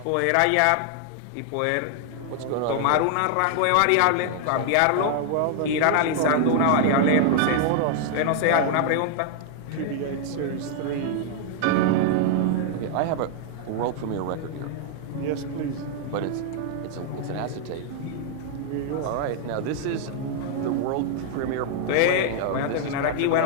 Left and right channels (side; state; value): both; different; correlation 0.00